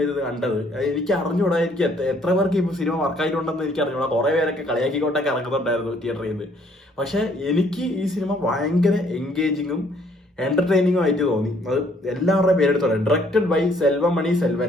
ഇരുന്ന് കണ്ടത്. എനിക്ക് അറിഞ്ഞൂടാ, എനിക്ക് എത്ര പേർക്ക് ഇപ്പൊ സിനിമ വർക്കായിട്ടുണ്ടെന്ന് എനിക്ക് അറിഞ്ഞൂടാ. കുറെ പേരൊക്കെ കളിയാക്കിക്കൊണ്ടൊക്കെ ഇറങ്ങുന്നുണ്ടായിരുന്നു തിയേറ്ററിൽ നിന്ന്. പക്ഷെ എനിക്ക് ഈ സിനിമ ഭയങ്കര എൻഗേജിങ്ങും എന്റർടൈനിങ്ങും ആയിട്ട് തോന്നി. അത് എല്ലാവരുടെയും പേരെടുത്തോളെ. Directed by Selvamani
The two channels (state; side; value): normal; both; correlation 0.64